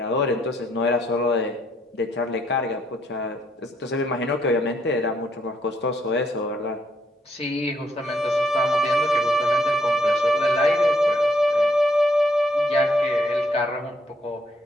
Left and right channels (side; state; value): both; normal; correlation 0.72